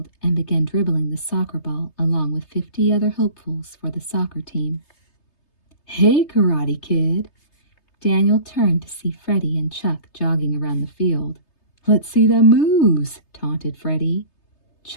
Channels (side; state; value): right; late; 3.3 ms